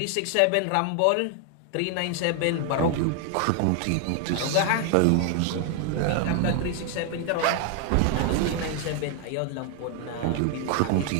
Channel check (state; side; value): different; both; correlation 0.00